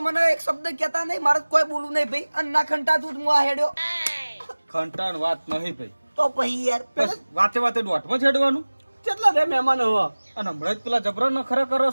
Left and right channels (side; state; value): both; inverted; correlation -1.00